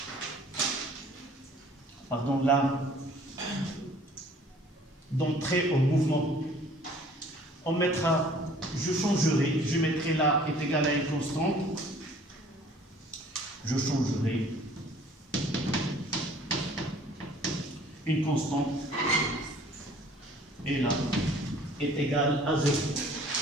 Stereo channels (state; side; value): normal; both; correlation 0.54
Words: Pardon, là, d'entrer au mouvement. On mettra, je changerai, je mettrai là est égal à une constante. Je changerai une constante et là est égal à 0.